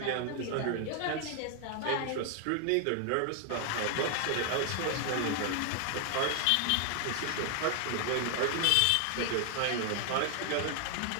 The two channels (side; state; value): both; different; correlation 0.00